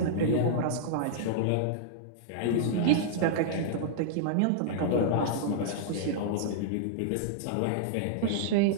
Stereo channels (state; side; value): different; both; correlation -0.01